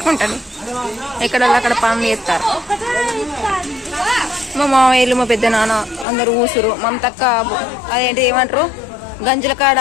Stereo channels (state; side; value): drops out; right; at 6.1 s